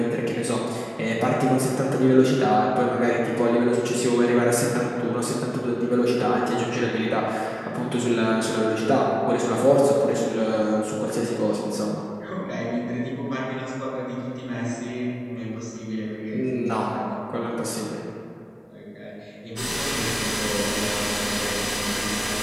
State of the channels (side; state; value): both; identical; correlation 1.00